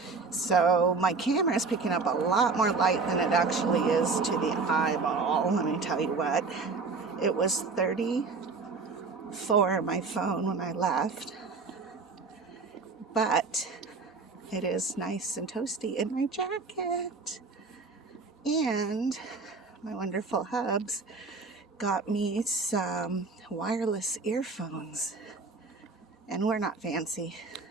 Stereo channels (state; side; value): quieter; left; 4.3 dB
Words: So my camera is picking up a lot more light than it actually is to the eyeball. Let me tell you what. It was 34 on my phone when I left. But it is nice and toasty in my jacket. And my wonderful hubs got me some wireless earphones. And we're not fancy